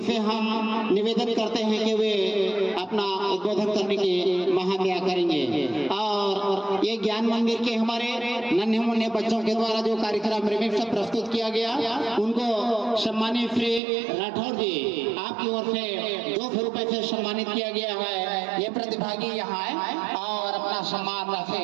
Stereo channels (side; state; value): left; drops out; at 13.8 s